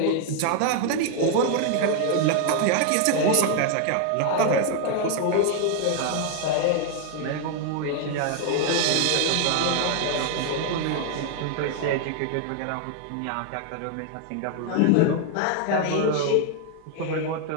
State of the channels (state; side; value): different; both; correlation 0.00